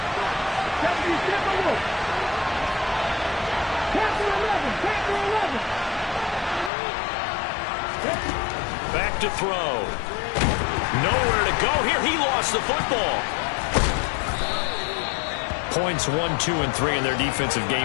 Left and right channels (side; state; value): right; drops out; at 6.7 s